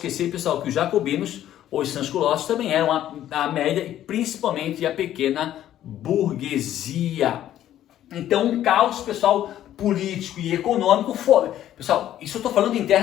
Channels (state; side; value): quieter; right; 12.0 dB